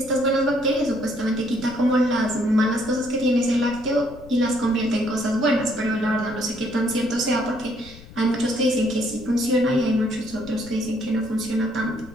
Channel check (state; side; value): noise; left; rumble, 19 dB below the sound